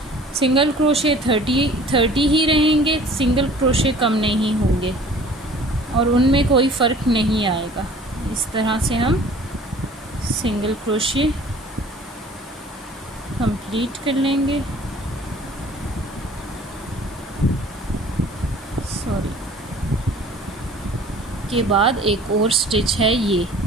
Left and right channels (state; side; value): normal; both; correlation 0.49